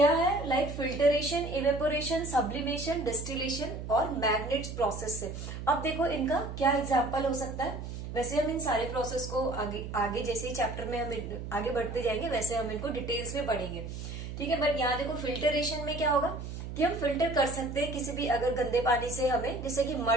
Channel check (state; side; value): noise; right; hum, 8 dB below the sound